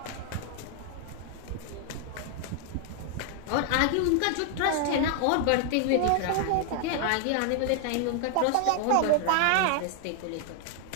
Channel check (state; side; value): different; both; correlation 0.00